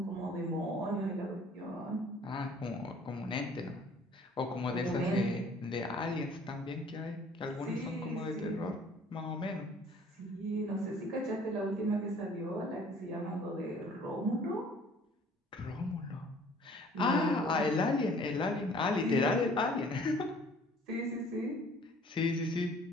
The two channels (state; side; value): normal; both; correlation 0.54